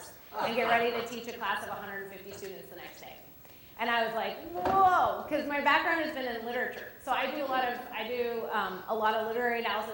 and get ready to teach a class of 150 students the next day. And I was like, whoa, because my background has been in literature. So I do a lot of literary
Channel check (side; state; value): both; identical; correlation 1.00